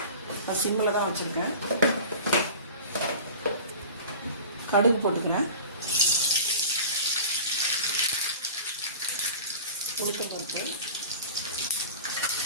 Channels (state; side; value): inverted; both; correlation -0.37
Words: நான் சிம்மில் தான் வச்சுருக்கேன். கடுகு போட்டுக்கிறேன். உளுத்தம் பருப்பு,